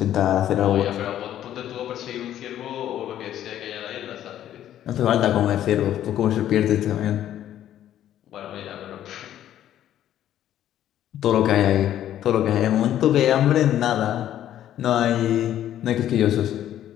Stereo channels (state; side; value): quieter; right; 11.6 dB